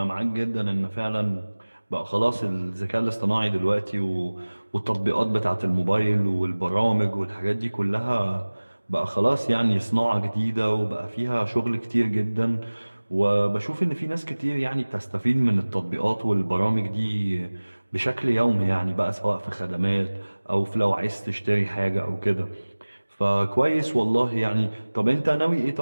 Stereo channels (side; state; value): both; inverted; correlation -1.00